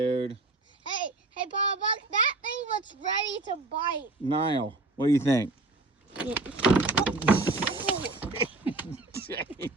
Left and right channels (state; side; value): quieter; left; 3.1 dB